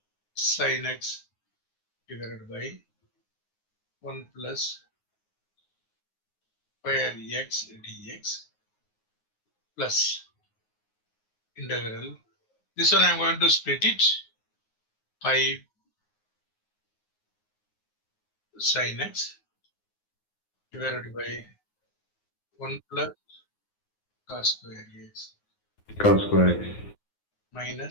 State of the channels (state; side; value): late; right; 9.5 ms